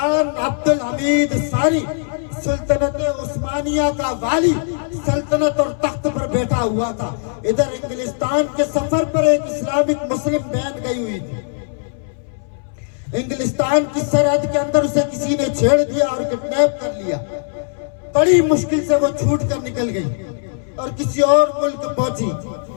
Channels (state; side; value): silent; right; 64 dB below the other